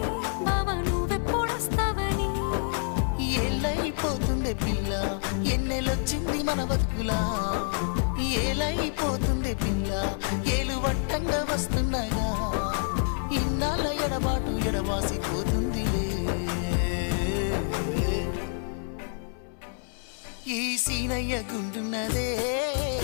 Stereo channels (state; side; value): silent; right; 60 dB below the other